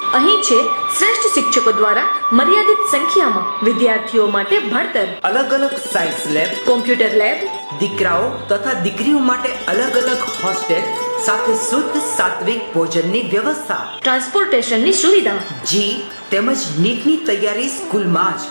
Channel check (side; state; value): both; inverted; correlation -1.00